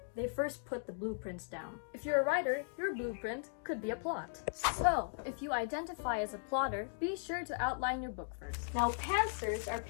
they first put the blueprints down. If you're a writer, your blueprint could be a plot. So, if you identify as a plotter, be sure to outline your book first. Now, pantsers are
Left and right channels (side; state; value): right; silent; digital silence